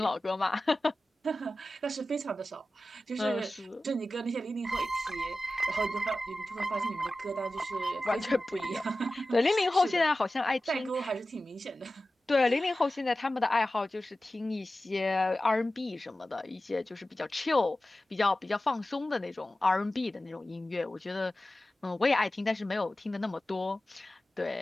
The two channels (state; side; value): normal; both; correlation 0.95